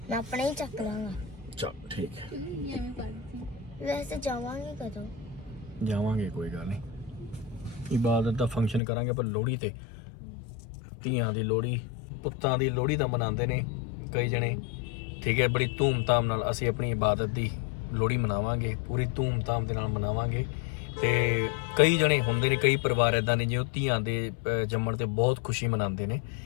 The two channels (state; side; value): drops out; right; at 8.8 s